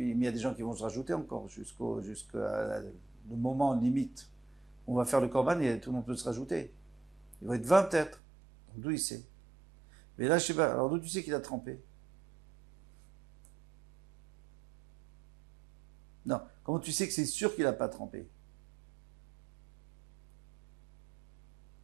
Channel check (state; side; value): drops out; left; at 8.2 s